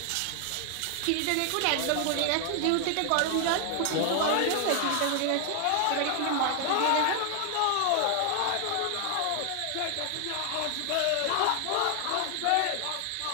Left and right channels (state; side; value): different; both; correlation 0.00